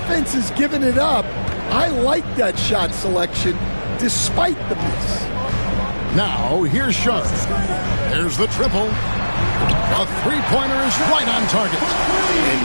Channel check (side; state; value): both; inverted; correlation -1.00